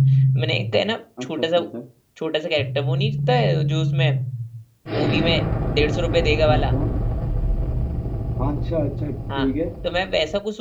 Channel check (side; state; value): both; identical; correlation 1.00